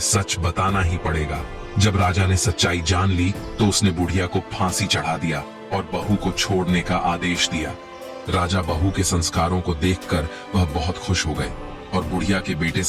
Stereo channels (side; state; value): both; identical; correlation 1.00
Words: सच बताना ही पड़ेगा। जब राजा ने सच्चाई जान ली तो उसने बुढ़िया को फांसी चढ़ा दिया और बहू को छोड़ने का आदेश दिया। राजा बहू के संस्कारों को देखकर वह बहुत खुश हो गए और बुढ़िया के बेटे